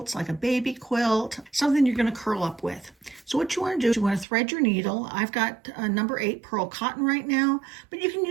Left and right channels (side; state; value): left; drops out; at 4.2 s